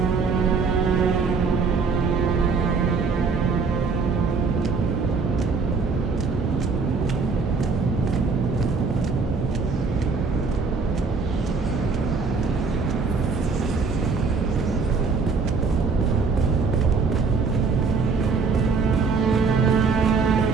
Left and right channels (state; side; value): quieter; left; 4.8 dB